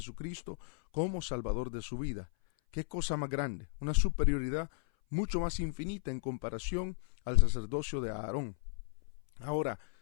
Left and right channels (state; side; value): silent; right; 54 dB below the other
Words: como Salvador de su vida. ¿Qué cosa más grande? Una superioridad mucho más infinita en comparación al sacerdocio de Aarón. Ahora,